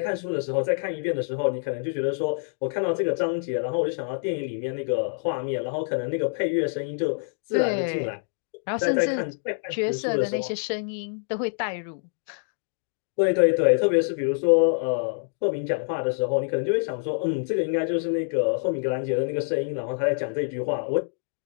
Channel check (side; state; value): right; silent; digital silence